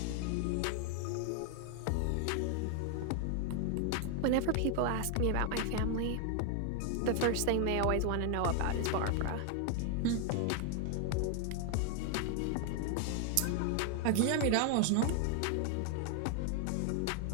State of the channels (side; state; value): both; different; correlation 0.00